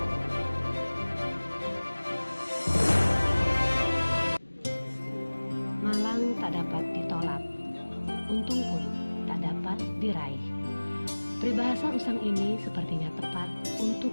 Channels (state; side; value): inverted; both; correlation -1.00